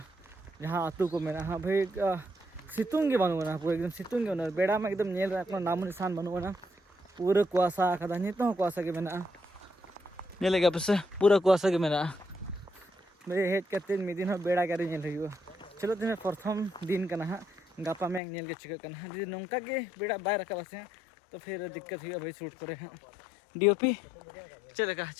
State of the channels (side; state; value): right; drops out; at 18.2 s